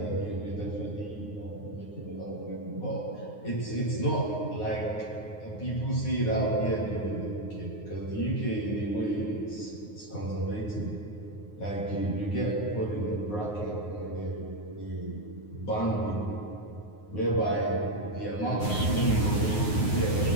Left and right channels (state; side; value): late; right; 9.6 ms